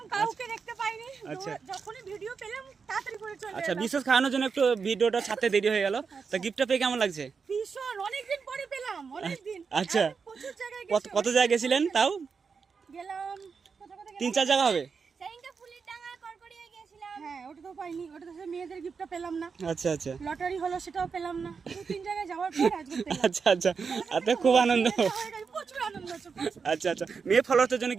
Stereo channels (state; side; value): quieter; left; 5.5 dB